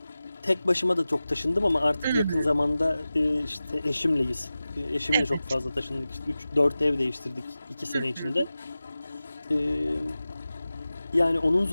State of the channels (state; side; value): inverted; both; correlation -0.95